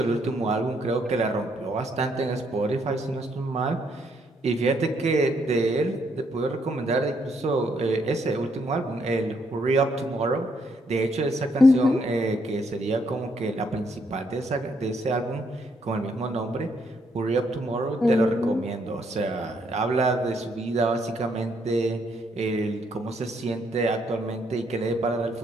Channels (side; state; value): both; normal; correlation 0.72